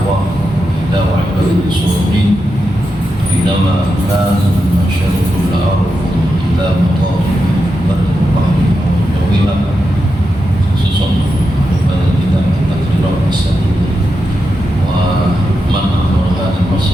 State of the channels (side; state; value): both; normal; correlation 0.87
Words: ila wa ibadil suhurin Inama kanu masyarukul arfum ila mutawfi berkembang jawilah khususun pada kita firaq as-sadid wa man amrah